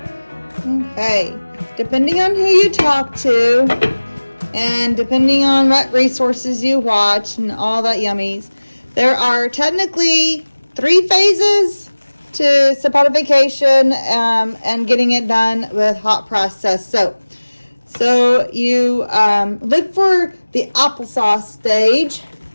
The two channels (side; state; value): both; inverted; correlation -1.00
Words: Okay, depending on who you talk to and depending on what resources you watch and all that yummies, there are technically 3 phases to saponification and getting it done with hot process soap. So you look for the applesauce stage,